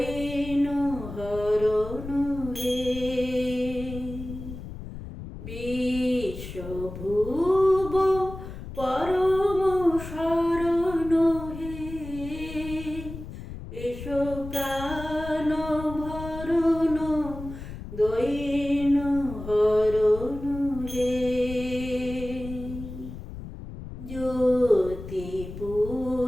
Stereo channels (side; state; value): left; noise; rumble, 11 dB below the sound